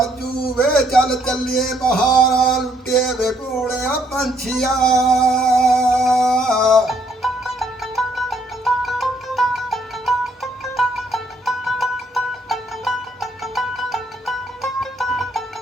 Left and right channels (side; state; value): both; normal; correlation 0.69